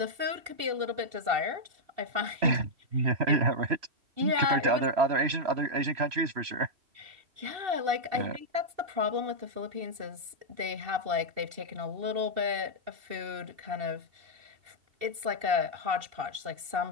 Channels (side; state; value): left; late; 2.7 ms